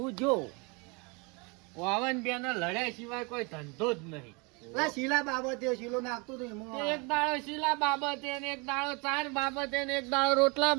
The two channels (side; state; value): left; quieter; 30.1 dB